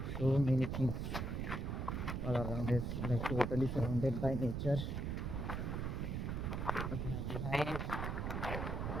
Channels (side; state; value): right; noise; rumble, 2 dB below the sound